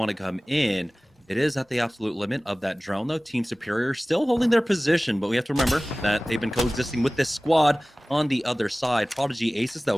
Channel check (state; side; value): normal; both; correlation 0.98